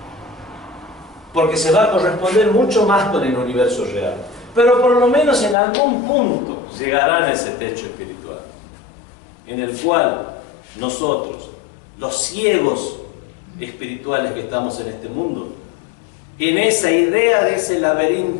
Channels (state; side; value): drops out; right; at 5.6 s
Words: porque se va a corresponder mucho más con el universo real. Pero por lo menos en algún punto llegarán a ese techo espiritual, en el cual nosotros, los ciegos espirituales que estamos en este mundo, en esa idea de ese